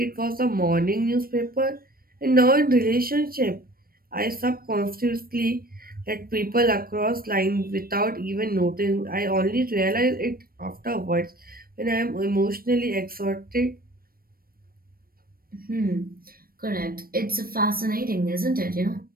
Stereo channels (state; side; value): late; left; 0.43 ms